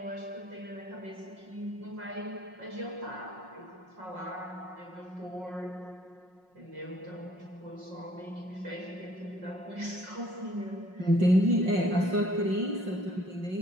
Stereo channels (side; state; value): left; late; 5.5 ms